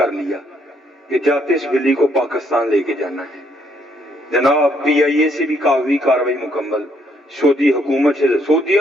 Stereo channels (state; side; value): normal; both; correlation 0.71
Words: لیا کہ جاتے اس بلی کو پاکستان لے کے جانا ہے. جناب پی آئی اے سے بھی کاغذی کاروائی مکمل, سعودی حکومت سے